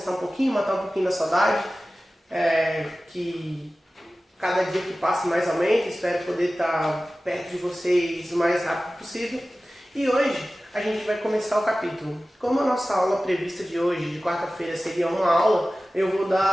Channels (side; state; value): both; normal; correlation 0.96